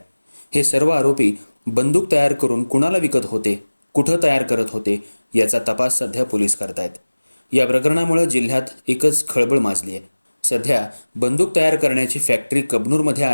हे सर्व आरोपी बंदूक तयार करून कुणाला विकत होते, कुठं तयार करत होते याचा तपास सध्या पोलीस करतायत. या प्रकरणामुळे जिल्ह्यात एकच खळबळ माजली आहे. सध्या बंदूक तयार करण्याची फॅक्टरी कबनूरमध्ये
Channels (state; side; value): inverted; both; correlation -1.00